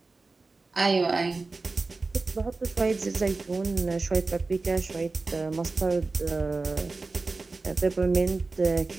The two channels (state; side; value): quieter; left; 3.7 dB